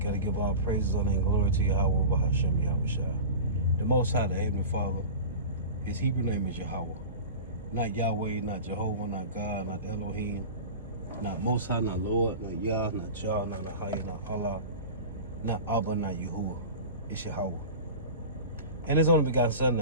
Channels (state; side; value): inverted; both; correlation -0.31